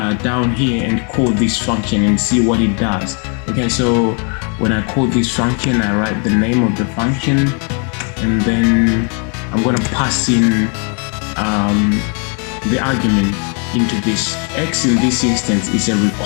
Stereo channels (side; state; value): right; quieter; 39.3 dB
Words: down here and call this function and see what it does. Okay, so when I call this function, I write the name of the function, and then I'm going to pass in the argument into this. X in this instance is a